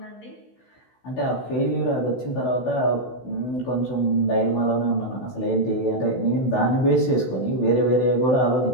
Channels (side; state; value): right; late; 16 ms